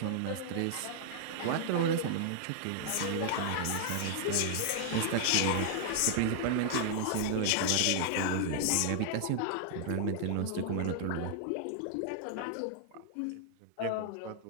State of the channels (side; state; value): both; different; correlation -0.01